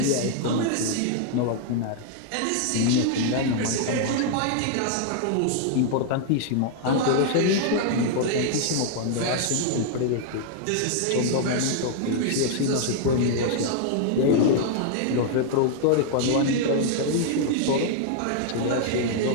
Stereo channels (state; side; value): different; both; correlation -0.01